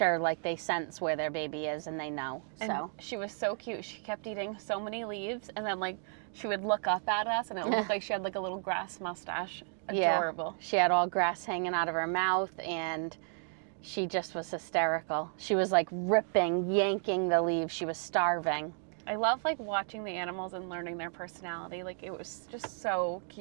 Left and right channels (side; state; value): left; silent; 56 dB below the other